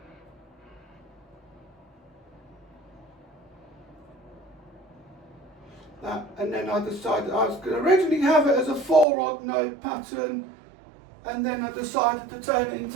that, and then I decided I was going to originally have it as a 4 odd node pattern, and then I decided to turn it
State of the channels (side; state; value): left; drops out; at 9.1 s